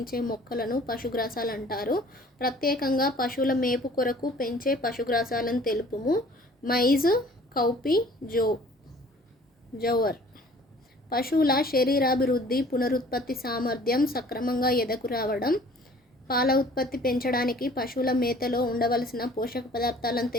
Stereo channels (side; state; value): both; normal; correlation 0.52